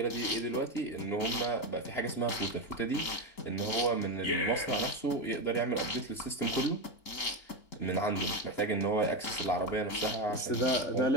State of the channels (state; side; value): late; right; 3.8 ms